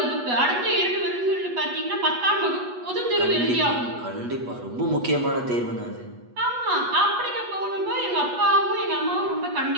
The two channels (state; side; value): late; left; 8.2 ms